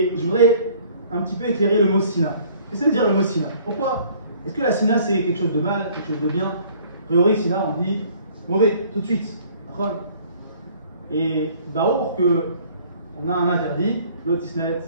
je voudrais un petit peu éclairer le mot Sina. Qu'est-ce que veut dire le mot Sina? Pourquoi? Est-ce que la Sina c'est quelque chose de mal, quelque chose de bien? A priori, Sina on dit mauvais, tout de suite. Et Barour qu'on a un interdit, l'otisnet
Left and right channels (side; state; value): both; inverted; correlation -0.56